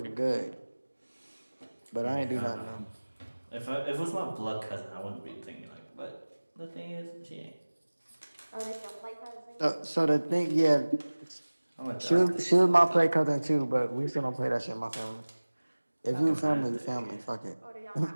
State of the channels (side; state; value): both; inverted; correlation -1.00